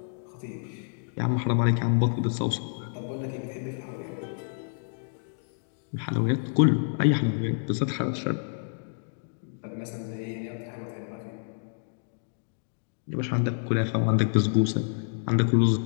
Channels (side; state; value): right; silent; digital silence